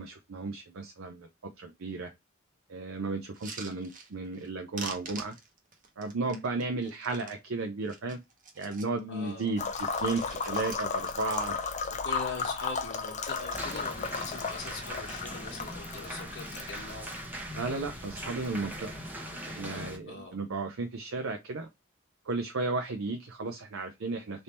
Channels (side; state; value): both; normal; correlation 0.04